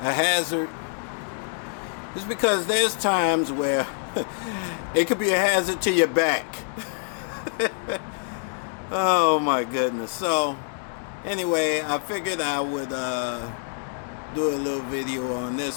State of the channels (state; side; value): silent; right; 60 dB below the other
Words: hazard is because there's times where it could be a hazard to your back. Oh my goodness. So anyway, I figured I would do a little video on